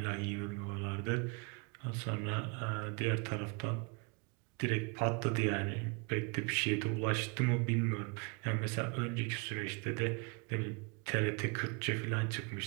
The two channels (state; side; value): quieter; left; 32.7 dB